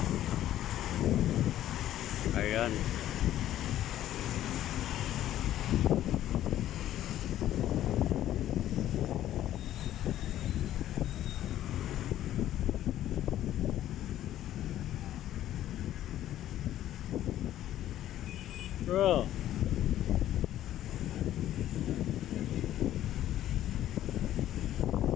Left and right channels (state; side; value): quieter; right; 12.6 dB